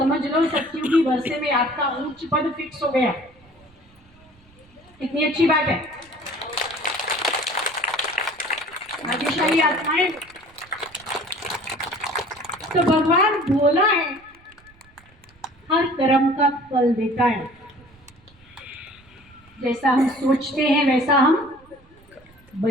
लो सत्युगी वर्षे में आपका उच्च पद फिक्स हो गया। कितनी अच्छी बात है। भाग्यशाली आत्माएं। तो भगवान भोला है, हर कर्म का फल देता है। जैसा हम सोचते हैं वैसा हम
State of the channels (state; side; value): noise; right; rumble, 28 dB below the sound